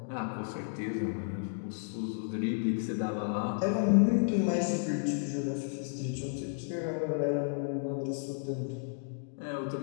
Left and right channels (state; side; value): silent; right; digital silence